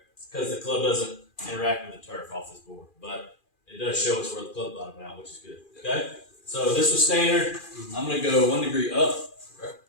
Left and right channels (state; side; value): late; right; 2.4 ms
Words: because the club doesn't interact with the turf off this board. But it does show us where the club bottomed out, which is good. Okay? So this was standard. I'm going to go 1 degree up,